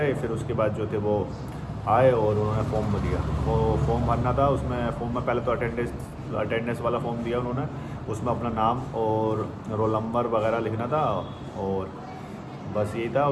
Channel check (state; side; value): identical; both; correlation 1.00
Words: फिर उसके बाद जो थे वो आए और उन्होंने फॉर्म दिया। वो फॉर्म भरना था। उसमें फॉर्म में पहले तो अटेंडेंस वाला फॉर्म दिया उन्होंने। उसमें अपना नाम और रोल नंबर वगैरह लिखना था, और बस यही था